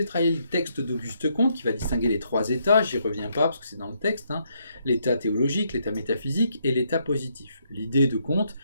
travaillé le texte d'Auguste Comte qui va distinguer les trois états, j'y reviens pas parce que c'est dans le texte, l'état théologique, l'état métaphysique et l'état positif. L'idée de Comte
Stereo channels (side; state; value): both; inverted; correlation -0.75